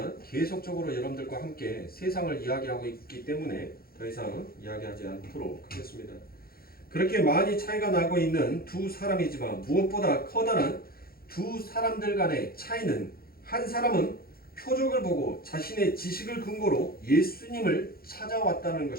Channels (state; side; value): late; right; 0.44 ms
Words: 계속적으로 여러분들과 함께 세상을 이야기하고 있기 때문에 더 이상 이야기하지 않도록 하겠습니다. 그렇게 많이 차이가 나고 있는 두 사람이지만 무엇보다 커다란 두 사람들 간의 차이는 한 사람은 표적을 보고 자신의 지식을 근거로 예수님을 찾아왔다는